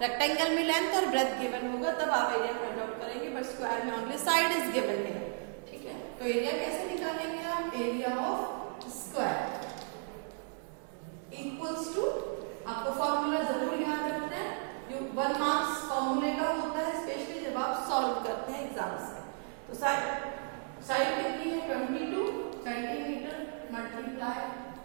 में लेंथ और ब्रेथ गिवन होगा, तब आप एरिया फाइंड आउट करेंगे, बट स्क्वायर में ओनली साइड इज गिवन है, ठीक है। तो एरिया कैसे निकालेंगे आप, area of square equals to, आपको फॉर्मूला जरूर याद रखना है, जो 1 मार्क्स फॉर्मूले का होता है, स्पेशली जब आप सॉल्व करते हैं एग्जाम्स में। तो साइड कितनी है, 22 सेंटीमीटर मल्टीप्लाई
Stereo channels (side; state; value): left; silent; 55 dB below the other